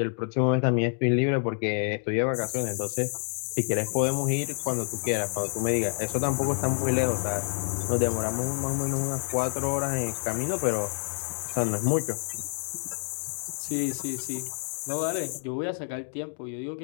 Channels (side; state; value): right; silent; 59 dB below the other